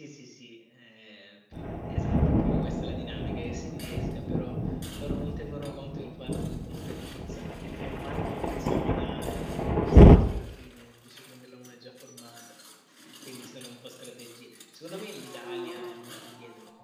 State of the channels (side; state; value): both; identical; correlation 1.00